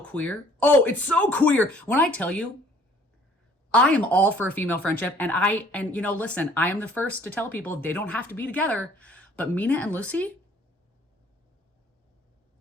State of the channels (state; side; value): normal; both; correlation 0.56